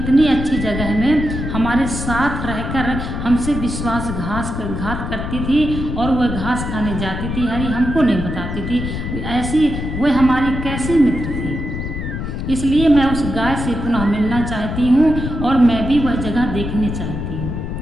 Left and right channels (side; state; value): left; noise; rumble, 5 dB below the sound